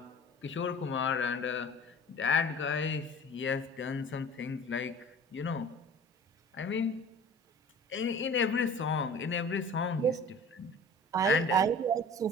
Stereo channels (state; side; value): normal; both; correlation 0.42